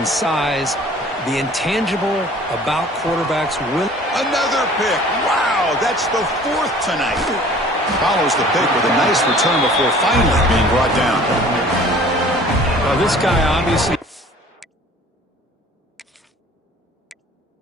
size. The intangible about quarterbacks will... Another pick. Wow, that's the 4th tonight. Follows the pick with a nice return before finally being brought down. Well, this guy obviously...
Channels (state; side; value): normal; both; correlation 0.49